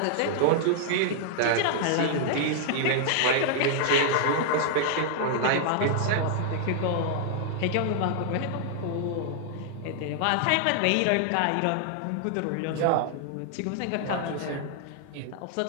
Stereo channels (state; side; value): different; both; correlation 0.00